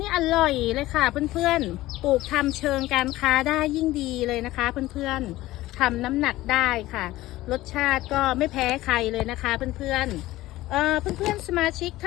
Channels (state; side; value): quieter; right; 17.0 dB